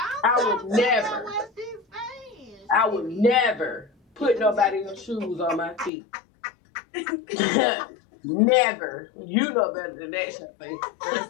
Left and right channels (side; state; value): right; drops out; at 5.9 s